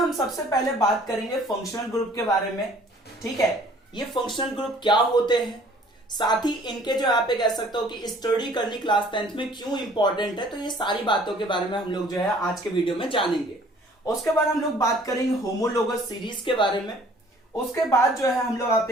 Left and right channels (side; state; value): both; normal; correlation 0.55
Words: सबसे पहले बात करेंगे फंक्शनल ग्रुप के बारे में। ठीक है, ये फंक्शनल ग्रुप क्या होते हैं, साथ ही इनके जो आप कह सकते हो कि स्टडी करनी क्लास 10th में क्यों इंपॉर्टेंट है, तो ये सारी बातों के बारे में हम लोग जो है आज के वीडियो में जानेंगे। उसके बाद हम लोग बात करेंगे होमोलोगस सीरीज के बारे में। उसके बाद जो है हम लोग आप